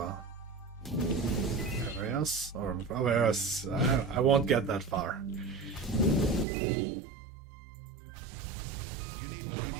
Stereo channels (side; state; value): left; drops out; at 6.5 s